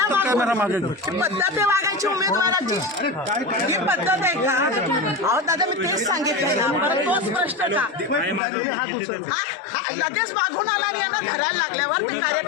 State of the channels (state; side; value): drops out; right; at 8.4 s